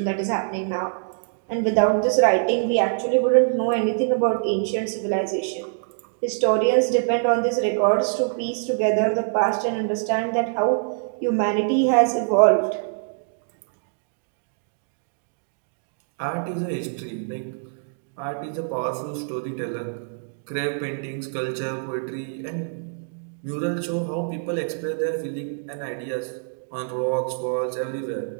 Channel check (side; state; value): left; silent; digital silence